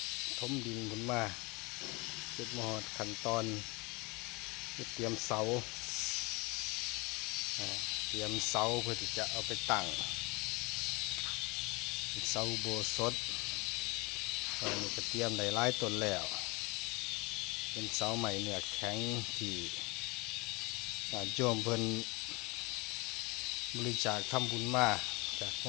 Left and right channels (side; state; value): right; quieter; 26.3 dB